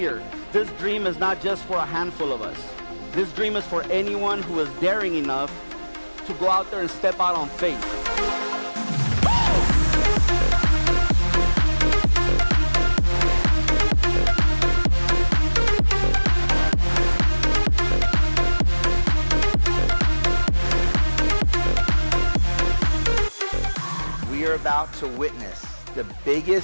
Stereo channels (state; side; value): inverted; both; correlation -1.00